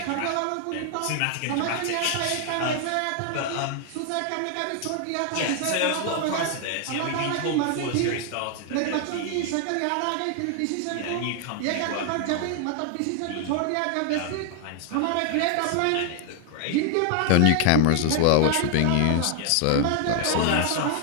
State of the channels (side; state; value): both; different; correlation 0.00